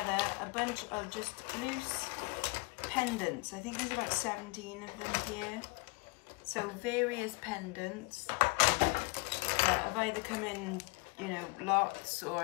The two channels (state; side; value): quieter; right; 28.6 dB